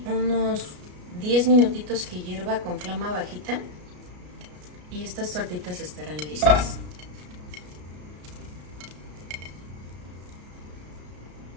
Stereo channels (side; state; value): left; late; 33 ms